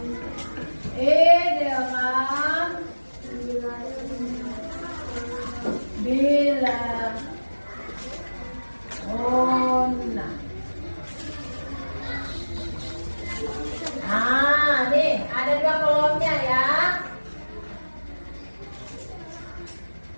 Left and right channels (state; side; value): inverted; both; correlation -1.00